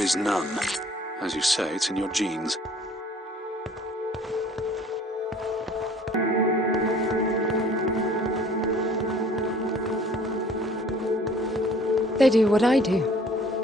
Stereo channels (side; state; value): both; normal; correlation 0.53